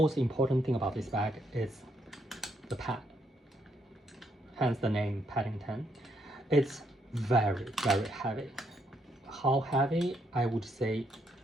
important thing about this bag is the pad. Hence the name Paddington. It's very, very heavy. How heavy? I would say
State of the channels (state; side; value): normal; both; correlation 0.75